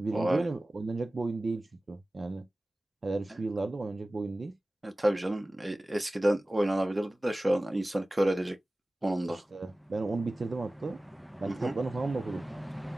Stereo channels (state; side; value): normal; both; correlation 0.97